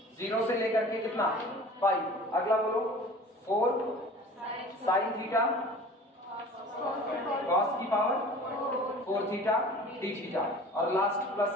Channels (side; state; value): both; normal; correlation 0.43